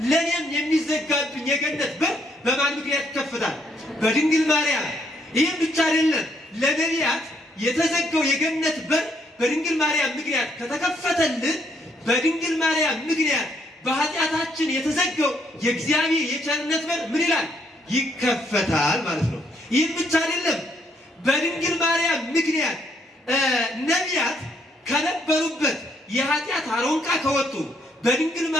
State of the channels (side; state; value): both; normal; correlation 0.71